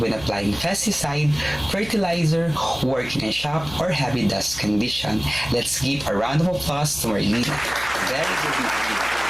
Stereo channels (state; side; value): noise; right; hum, 16 dB below the sound